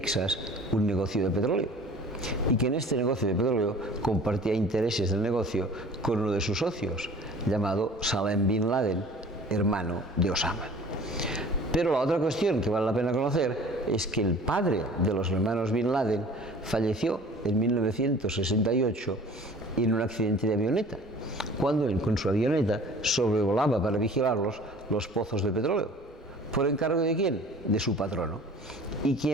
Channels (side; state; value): both; normal; correlation 0.46